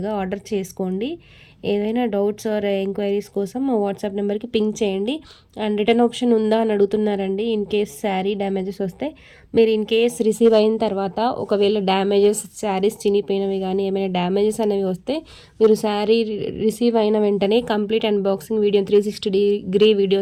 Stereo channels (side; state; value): both; identical; correlation 1.00